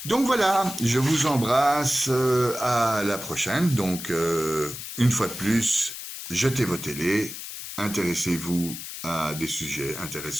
Donc voilà, je vous embrasse, à la prochaine. Donc, une fois de plus, jetez vos télés, intéressez-vous à des sujets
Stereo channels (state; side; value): noise; left; hiss, 9 dB below the sound